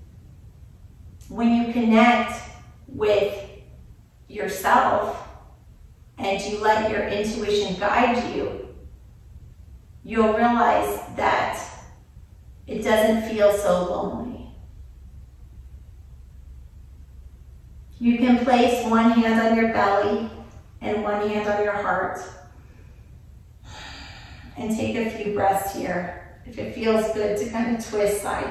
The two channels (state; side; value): identical; both; correlation 1.00